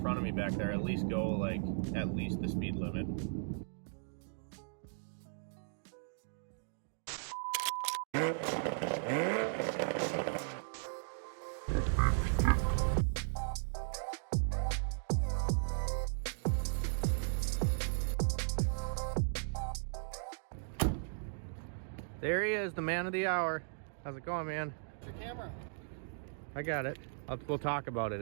front of me back there, at least go like at least the speed limit. There he is, the man of the hour. How's it going, man? Your camera. I got it. We'll talk about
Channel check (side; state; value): left; silent; digital silence